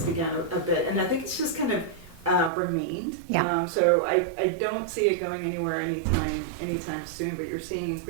began a bit, and I think it's just kind of remained. Yeah. So I don't see it going anywhere anytime soon. But you're seeing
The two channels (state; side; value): drops out; left; at 2.5 s